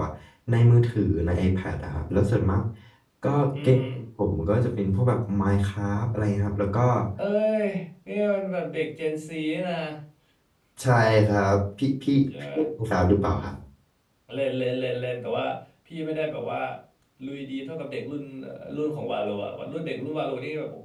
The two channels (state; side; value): identical; both; correlation 1.00